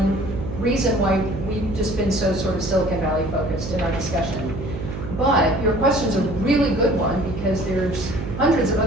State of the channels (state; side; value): noise; right; hum, 7 dB below the sound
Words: reason why we've just been so sort of Silicon Valley focused in our discussion. But your question's a really good one because there's hundreds of